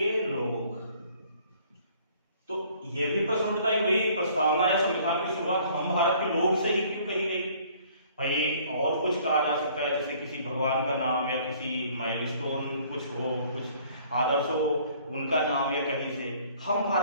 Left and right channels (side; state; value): both; inverted; correlation -0.57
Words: लोग। तो ये भी प्रश्न उठता है, वही प्रस्तावना या संविधान की शुरुआत हम भारत के लोग से ही क्यों कही गई? भाई और कुछ कहा जा सकता है, जैसे किसी भगवान का नाम या किसी माइलस्टोन कुछ हो, कुछ आदर्श हो, उनका नाम या कहीं से हम